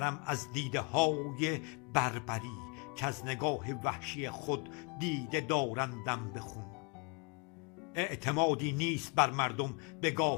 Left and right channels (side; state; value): right; quieter; 33.1 dB